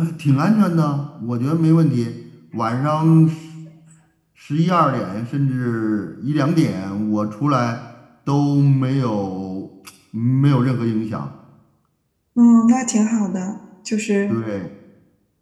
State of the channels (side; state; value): both; identical; correlation 1.00